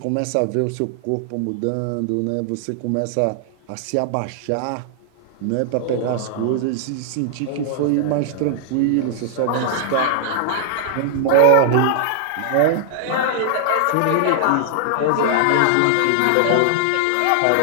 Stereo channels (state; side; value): different; both; correlation -0.01